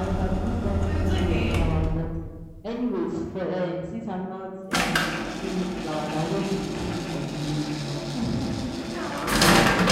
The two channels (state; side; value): identical; both; correlation 1.00